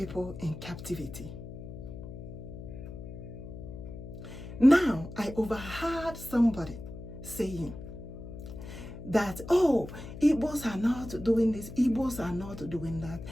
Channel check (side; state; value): left; noise; hum, 11 dB below the sound